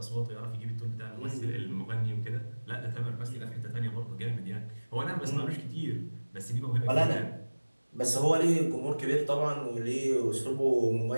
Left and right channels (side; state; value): both; inverted; correlation -1.00